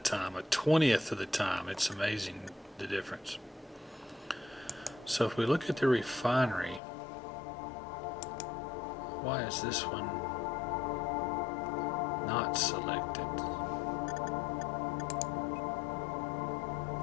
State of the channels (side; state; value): right; drops out; at 6.8 s